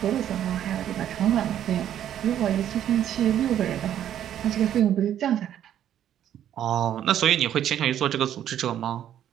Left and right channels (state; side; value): quieter; left; 10.7 dB